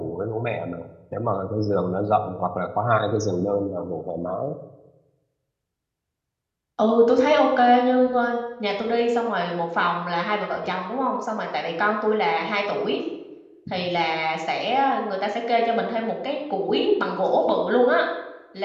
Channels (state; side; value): identical; both; correlation 1.00